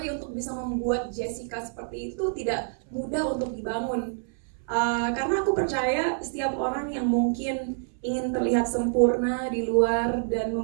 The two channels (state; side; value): silent; left; 60 dB below the other